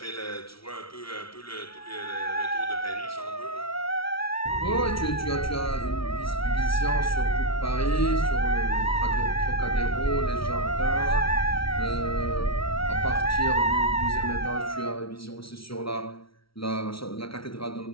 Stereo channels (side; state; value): right; late; 0.75 ms